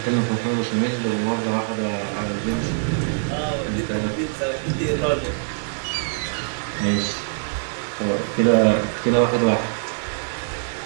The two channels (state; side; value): silent; left; digital silence